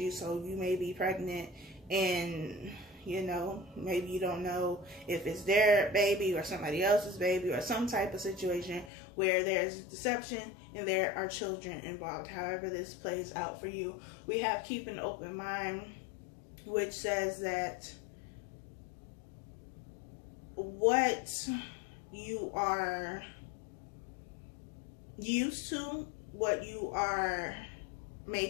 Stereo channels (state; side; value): drops out; right; at 8.9 s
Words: so you may be pregnant and you know, maybe you don't know if it's their baby or somebody else's baby or some type of situation where there's deception and there are children involved. However this plays out for you, we have keep an open mind, which says that what you are used to, what you are